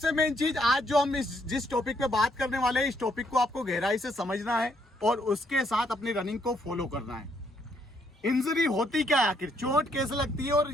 मेन चीज आज जो हम जिस टॉपिक पे बात करने वाले हैं, इस टॉपिक को आपको गहराई से समझना है और उसके साथ अपनी रनिंग को फॉलो करना है। इंजरी होती क्या है, आखिर चोट कैसे लगती है और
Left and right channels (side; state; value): both; normal; correlation 0.72